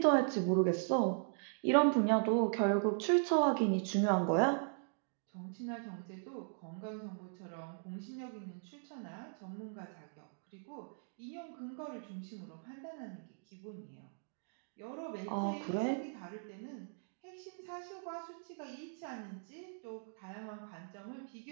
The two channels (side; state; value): left; silent; digital silence